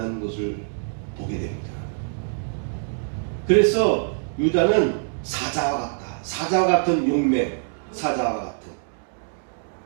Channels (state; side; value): silent; left; digital silence